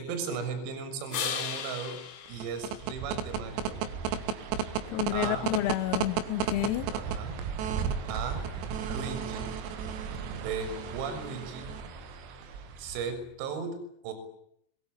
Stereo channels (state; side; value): late; left; 23 ms